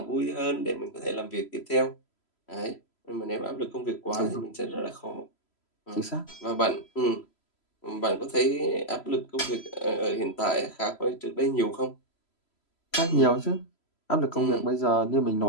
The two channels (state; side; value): late; right; 3.0 ms